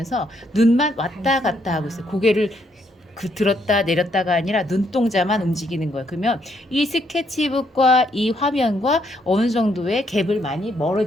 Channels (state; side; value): normal; both; correlation 0.73